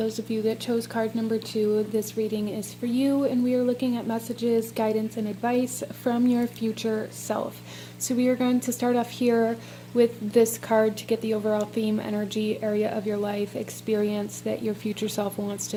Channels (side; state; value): both; identical; correlation 1.00